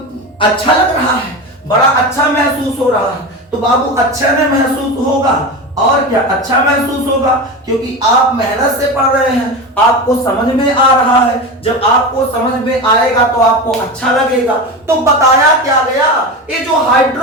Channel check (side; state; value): both; normal; correlation 0.24